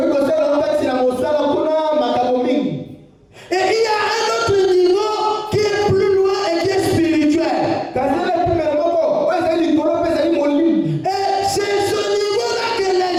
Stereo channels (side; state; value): both; identical; correlation 1.00